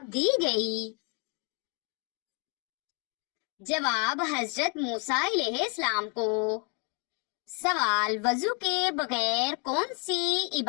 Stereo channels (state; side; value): quieter; right; 36.5 dB